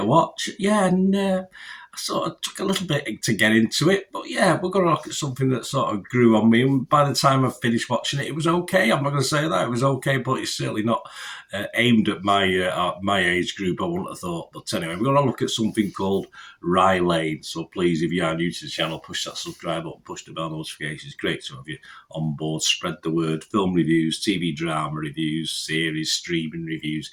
watch. Yeah, and I sort of took a little bit to get into it, but yeah, we're going to look at something that sort of grew on me, and by the time I finished watching it was okay. I'm not going to say that it was okay, but it's certainly not aimed at my age group, I wouldn't have thought. But anyway, we're going to look at something called RYE. So please, if you are new to the channel, push that subscribe button, push the bell notifications. Great to have you on board. Spread the word. Film reviews, TV drama reviews, series, streaming reviews,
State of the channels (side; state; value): both; identical; correlation 1.00